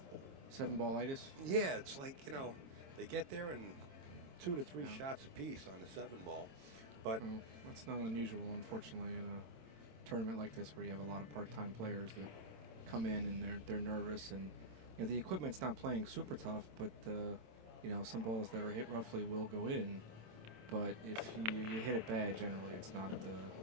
7-ballitis? Yeah, it's like, they get there in 2 to 3 shots apiece on the 7-ball. But well, that's not unusual, unfortunately, in a tournament like this where you have a lot of part-time players that come in and they're nervous, and the equipment's not playing super tough, but some balls that are hit roughly will go in. But if you hit it bad, generally it's not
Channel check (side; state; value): left; late; 27 ms